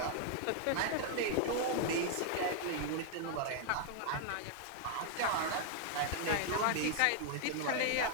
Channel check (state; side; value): different; both; correlation 0.00